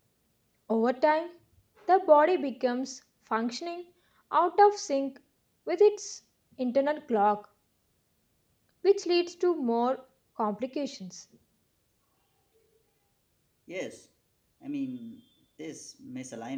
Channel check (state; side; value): identical; both; correlation 1.00